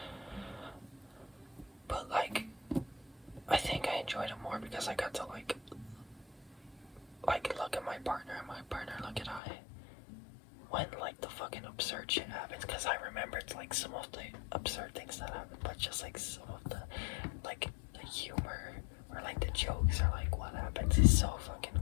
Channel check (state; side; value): drops out; right; at 9.4 s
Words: absurd shit happens, because I remember it's like some of the absurd things that happen, but just like some of the like the humor or like the jokes or like what happens is so fucking